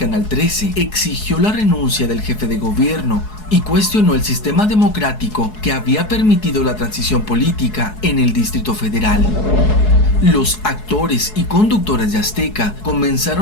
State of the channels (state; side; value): late; right; 4.7 ms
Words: 13, exigió la renuncia del jefe de gobierno y cuestionó el sistema democrático que había permitido la transición política en el Distrito Federal. Los actores y conductores de Azteca